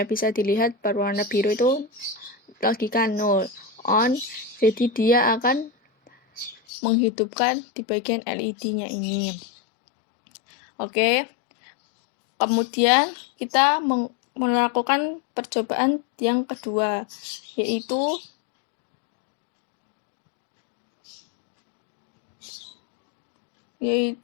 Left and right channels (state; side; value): drops out; right; at 6.6 s